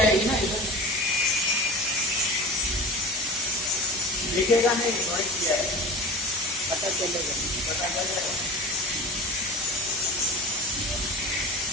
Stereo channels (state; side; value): normal; both; correlation 0.35